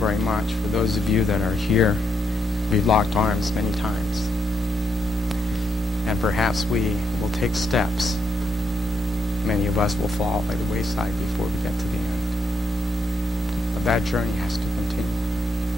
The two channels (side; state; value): both; normal; correlation 0.79